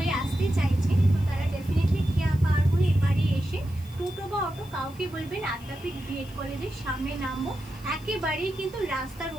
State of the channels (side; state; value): right; noise; hiss, 25 dB below the sound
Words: আসতে চাইছেন, তো তারা ডেফিনেটলি খেয়া পার হয়ে এবারে এসে টোটো বা অটো কাউকে বলবেন আদ্যাপীঠ বিএড কলেজের সামনে নামবো। একেবারেই কিন্তু রাস্তার